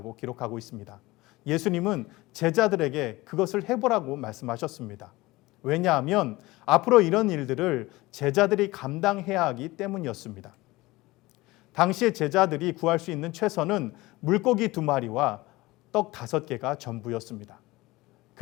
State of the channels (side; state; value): right; quieter; 20.3 dB